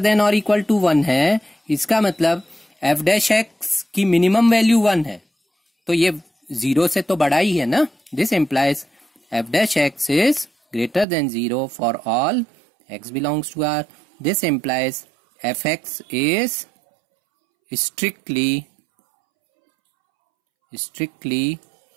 or equal to 1 है, इसका मतलब f dash x की minimum value 1 है, तो ये 0 से तो बड़ा ही है ना। This implies f dash x is greater than 0 for all x belongs to R. This implies fx is strictly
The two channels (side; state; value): left; drops out; at 11.1 s